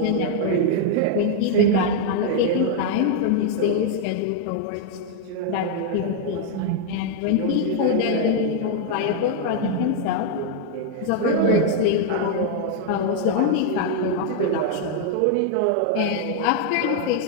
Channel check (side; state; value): both; different; correlation 0.00